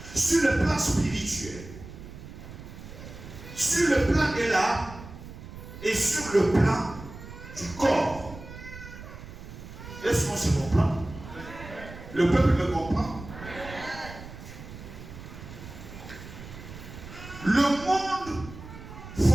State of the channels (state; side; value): noise; right; rumble, 14 dB below the sound